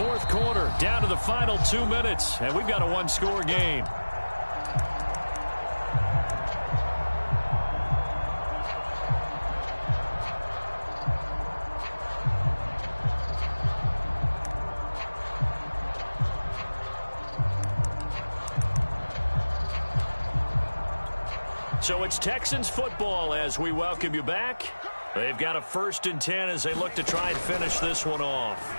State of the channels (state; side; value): inverted; both; correlation -1.00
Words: quarter, down to the final 2 minutes, and we've got a one-score game. So it's Texans football as we welcome you back. They've got a 1st and 10 as they look to try and finish this one off.